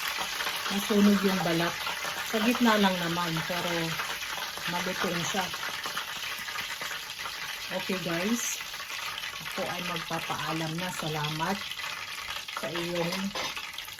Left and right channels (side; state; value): both; identical; correlation 1.00